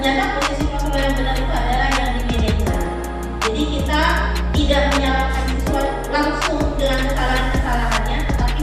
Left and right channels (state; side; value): identical; both; correlation 1.00